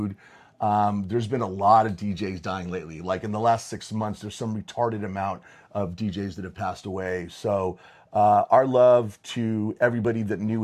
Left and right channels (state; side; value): identical; both; correlation 1.00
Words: There's been a lot of DJs dying lately. Like in the last 6 months, there's some retarded amount of DJs that have passed away. So our love to everybody that knew